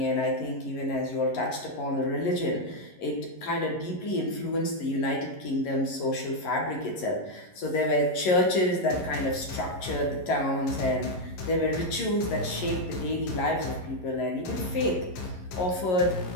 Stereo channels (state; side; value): late; right; 11 ms